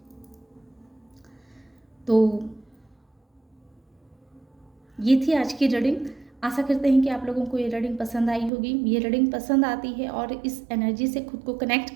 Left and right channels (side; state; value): left; drops out; at 8.5 s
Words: तो ये थी आज की रीडिंग। आशा करते हैं कि आप लोगों को ये रीडिंग पसंद आई होगी। ये रीडिंग पसंद आती है और इस एनर्जी से खुद को कनेक्ट